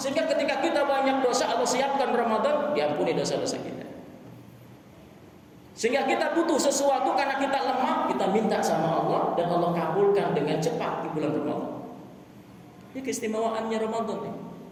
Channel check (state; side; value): identical; both; correlation 1.00